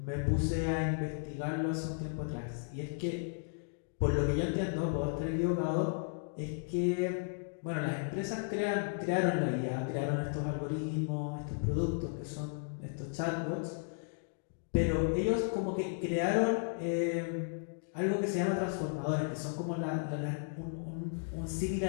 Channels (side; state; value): right; silent; digital silence